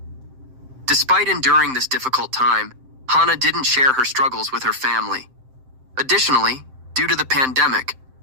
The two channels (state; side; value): late; left; 7.7 ms